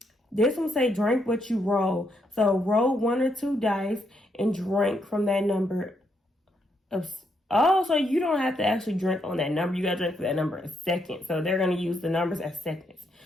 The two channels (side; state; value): both; normal; correlation 0.77